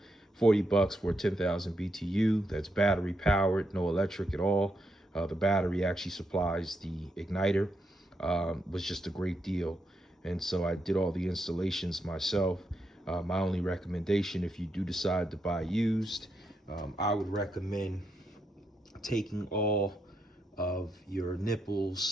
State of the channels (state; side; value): normal; both; correlation 0.81